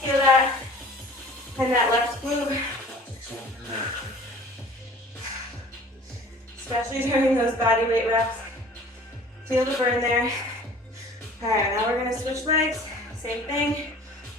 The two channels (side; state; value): both; normal; correlation 0.47